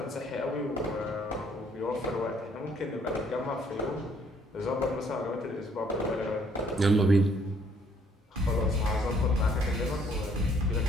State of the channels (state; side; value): normal; both; correlation 0.65